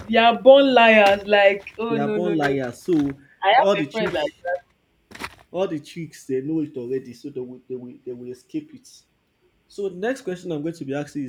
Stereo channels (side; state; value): both; identical; correlation 1.00